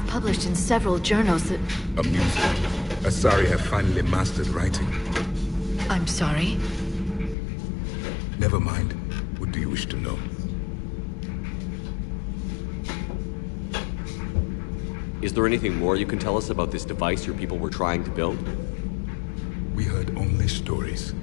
published in several journals that... Amusing. Asari have finally mastered writing. I'm sorry? Never mind. What do you wish to know? Is there anything more you can tell us about this device your people were trying to build? We heard only stories.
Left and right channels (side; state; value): right; drops out; at 7.4 s